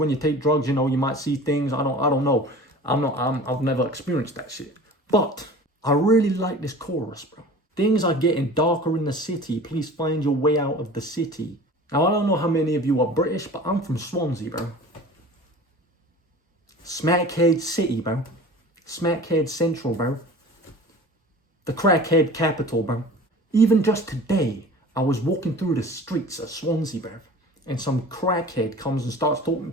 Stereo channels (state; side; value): normal; both; correlation 0.41